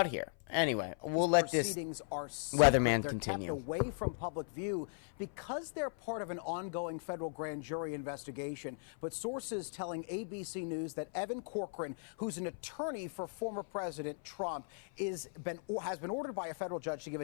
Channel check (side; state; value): right; silent; 53 dB below the other